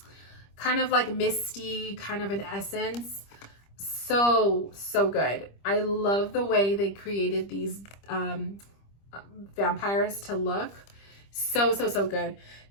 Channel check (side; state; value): right; late; 25 ms